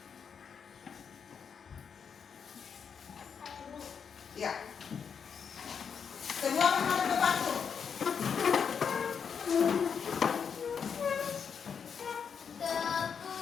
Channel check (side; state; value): right; quieter; 6.8 dB